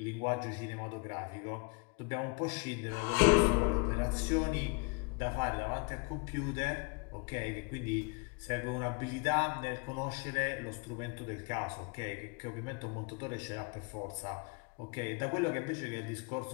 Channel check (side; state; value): right; quieter; 31.4 dB